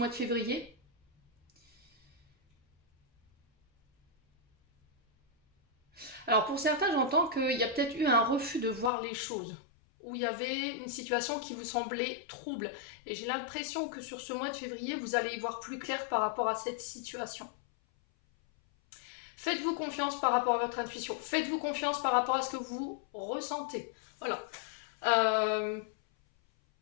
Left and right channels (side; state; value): right; drops out; at 8.9 s